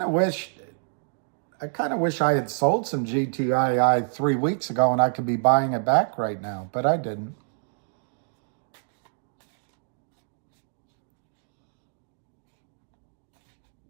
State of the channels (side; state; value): left; silent; digital silence